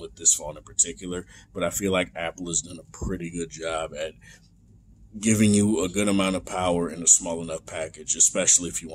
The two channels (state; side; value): identical; both; correlation 1.00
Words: this phone in particular. But I feel like Apple has done a pretty good job at giving you a good amount of power in a small enough package, especially if you